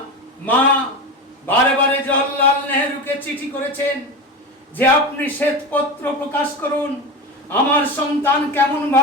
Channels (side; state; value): both; normal; correlation 0.23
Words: মা বারে বারে জওহরলাল নেহরুকে চিঠি করেছেন যে আপনি শ্বেতপত্র প্রকাশ করুন, আমার সন্তান কেমন